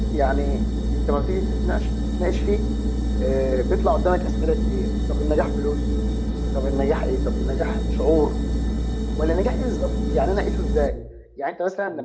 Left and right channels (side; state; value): both; identical; correlation 1.00